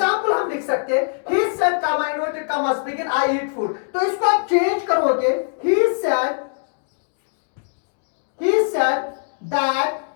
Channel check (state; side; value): silent; right; digital silence